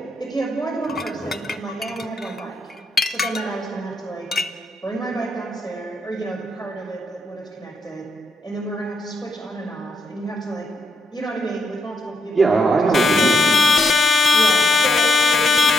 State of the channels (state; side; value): normal; both; correlation 0.79